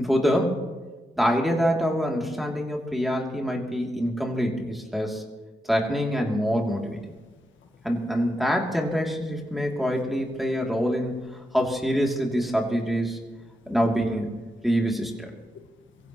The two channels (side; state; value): both; normal; correlation 0.86